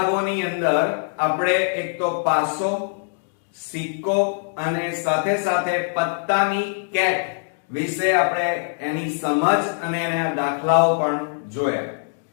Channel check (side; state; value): right; silent; digital silence